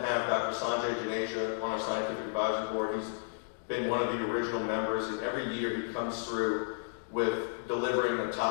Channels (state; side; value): silent; right; digital silence